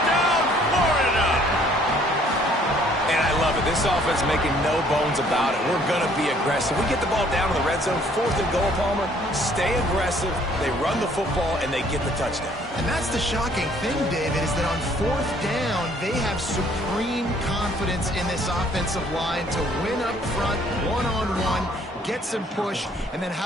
Florida! And I love it. This offense making no bones about it. We're going to be aggressive. We get the ball down to the red zone, fourth and goal, Palmer. Stay aggressive. They run the football, and they get the touchdown. And that's the shocking thing, David, is that on fourth down, they have supreme confidence in this offensive line to win up front, one-on-one, get some push, and then how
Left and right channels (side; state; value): both; normal; correlation 0.61